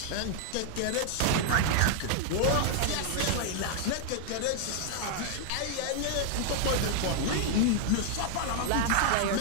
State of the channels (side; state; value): both; different; correlation 0.00